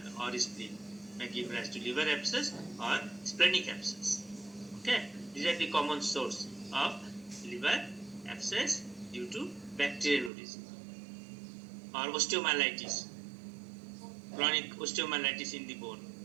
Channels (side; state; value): left; drops out; at 10.3 s